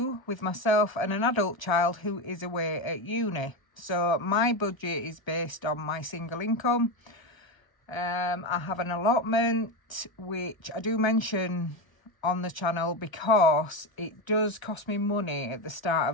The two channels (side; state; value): right; late; 1.3 ms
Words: with myself and an adult child who is away at uni. So my budget is based on my single income. I have an allotment, which I do mention on the channel because it does cost me money at the start